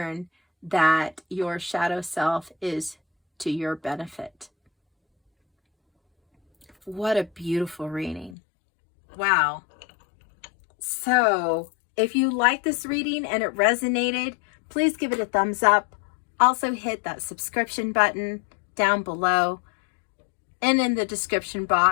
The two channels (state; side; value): drops out; right; at 8.3 s